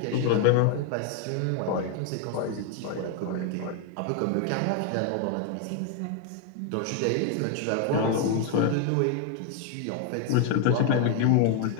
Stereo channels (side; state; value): both; different; correlation 0.01